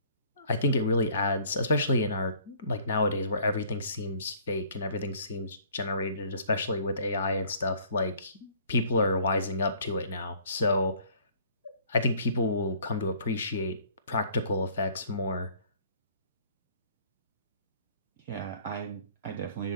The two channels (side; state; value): both; inverted; correlation -0.56